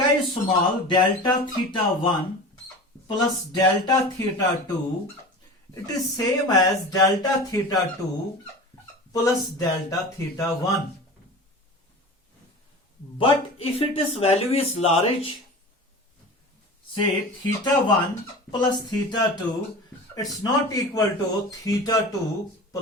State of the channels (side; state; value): both; normal; correlation 0.34